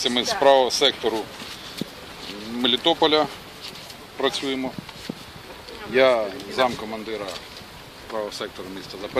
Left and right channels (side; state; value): both; identical; correlation 1.00